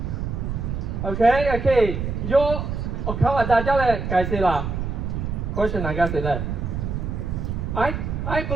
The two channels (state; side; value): noise; right; rumble, 3 dB below the sound